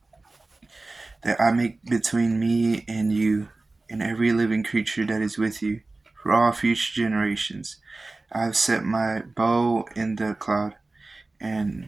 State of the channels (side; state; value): left; quieter; 3.2 dB